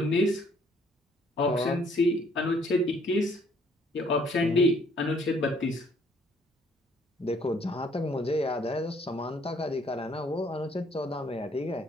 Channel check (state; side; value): normal; both; correlation 0.62